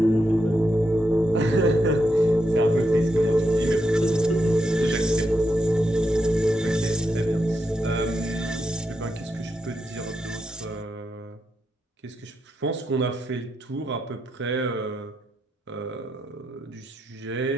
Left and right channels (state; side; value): normal; both; correlation 0.83